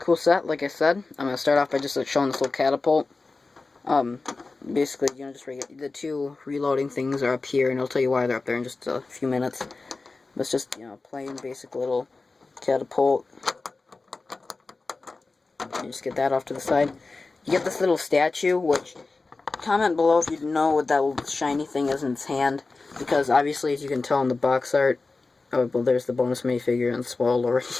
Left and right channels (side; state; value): right; quieter; 3.7 dB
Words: set, like I said. I'm going to start off by just showing this little catapult. Basically, you know, just the two reloading things are up here, and I'll tell you why they're up there in just a few minutes. But it's just, you know, plain basic little catapult. You just get that off to the side. You get this little statue, which, comment below if you know what that little shiny thing is in its hand, because obviously, as you can tell in the box art, oh, well, there's the bonus minifigure and spoiled already.